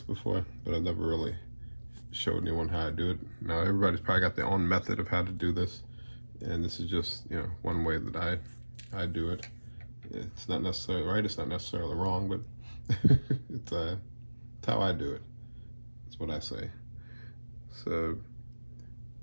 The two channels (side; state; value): both; inverted; correlation -1.00